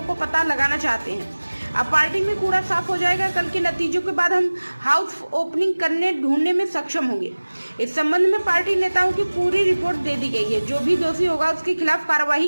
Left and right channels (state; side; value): inverted; both; correlation -1.00